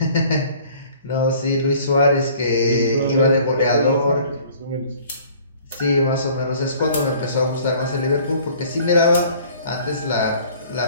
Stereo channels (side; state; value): both; inverted; correlation -0.53